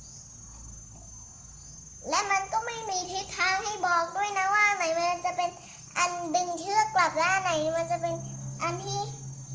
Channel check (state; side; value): identical; both; correlation 1.00